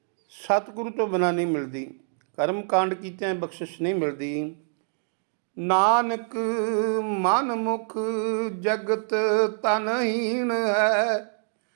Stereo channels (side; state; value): left; silent; 60 dB below the other